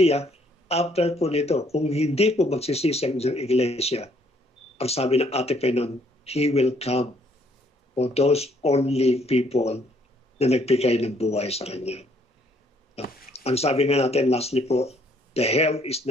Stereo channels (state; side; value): normal; both; correlation 0.66